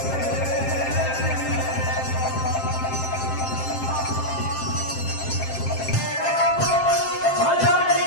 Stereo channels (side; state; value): right; late; 7.6 ms